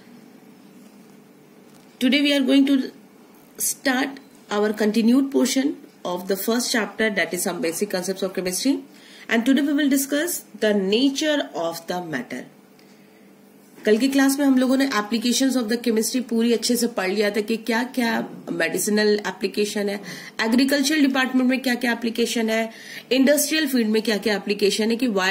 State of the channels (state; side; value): identical; both; correlation 1.00